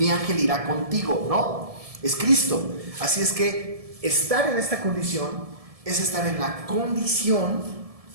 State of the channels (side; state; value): left; late; 1.7 ms